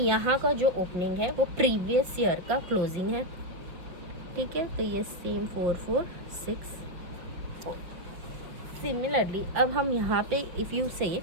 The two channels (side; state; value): left; late; 5.3 ms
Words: का जो ओपनिंग है वो प्रीवियस ईयर का क्लोजिंग है, ठीक है. तो ये सेम 4464. सिमिलरली अब हम यहाँ पे इफ़ यू से